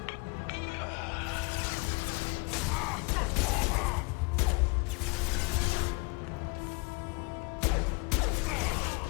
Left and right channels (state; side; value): quieter; right; 29.7 dB